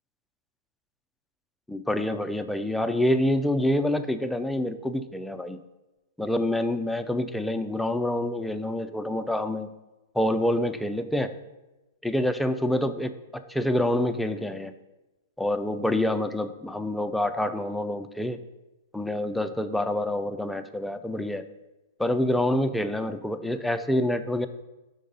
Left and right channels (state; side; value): normal; both; correlation 0.80